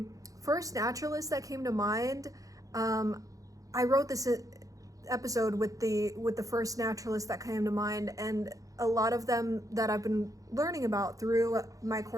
first naturalists that came to mind, I wrote this episode with the first naturalists that came to mind, and a lot of them that I've been learning about through my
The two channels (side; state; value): left; late; 0.17 ms